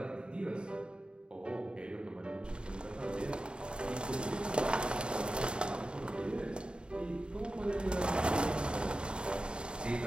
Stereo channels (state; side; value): late; left; 0.051 ms